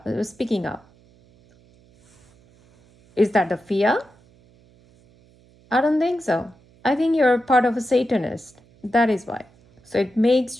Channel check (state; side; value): noise; right; hum, 30 dB below the sound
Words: Is that the fear? I don't think so. I think you're part of a Satanist. That is why. So it makes